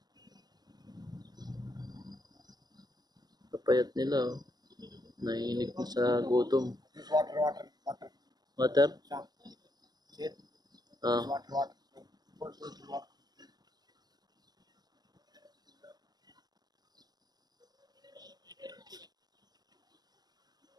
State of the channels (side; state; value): left; late; 0.19 ms